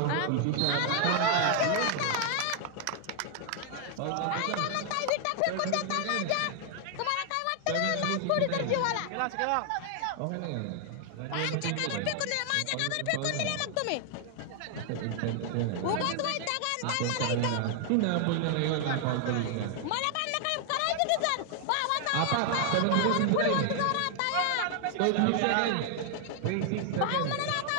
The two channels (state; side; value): different; both; correlation 0.00